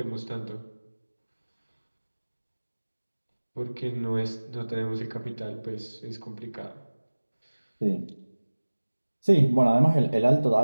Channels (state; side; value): inverted; both; correlation -1.00